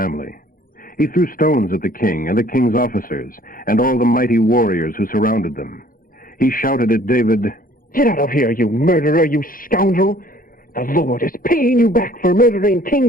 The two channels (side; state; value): right; late; 0.41 ms